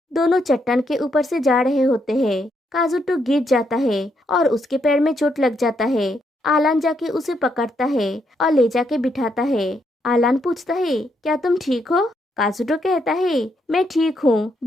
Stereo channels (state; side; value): normal; both; correlation 0.77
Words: दोनों चट्टान के ऊपर से जा रहे होते हैं। काजुटो गिर जाता है और उसके पैर में चोट लग जाता है। आलान जाके उसे पकड़ता है और ले जाके बिठाता है। आलान पूछता है क्या तुम ठीक हो? काजुटो कहता है मैं ठीक हूँ,